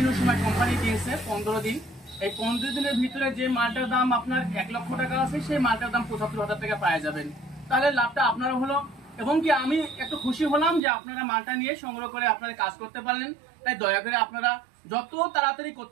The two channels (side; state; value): left; drops out; at 10.8 s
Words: সময় কোম্পানি দিয়েছে 15 দিন। এই 15 দিনের ভিতরে যে মালটার দাম আপনার 1 লক্ষ টাকা আছে, সেই মালটার দাম 75,000 টাকা পাওয়া যাবেন। তাহলে লাভটা আপনারা হলো, এবং কি আমি একটু খুশি হলাম যে আপনারা মালটা নিয়ে সংগ্রহ করে আপনারা কাজ করতে পারলেন। তাই দয়া করে আপনারা যত তাড়াতাড়ি